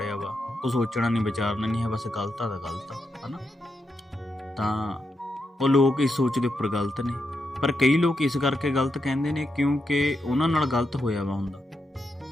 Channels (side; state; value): both; normal; correlation 0.84